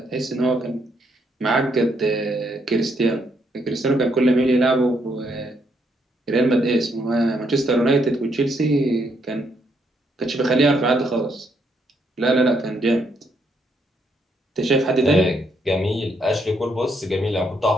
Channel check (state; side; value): normal; both; correlation 0.74